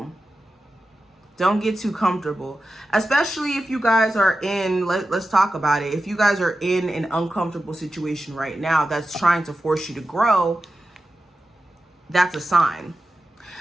Don't get too comfortable. Especially if you guys are in, let's talk about it. If you guys are in an uncomfortable situation right now that's trying to force you to grow, that's a sign.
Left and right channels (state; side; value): normal; both; correlation 0.92